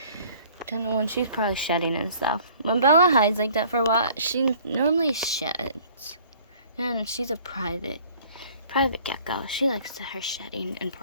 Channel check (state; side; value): inverted; both; correlation -0.53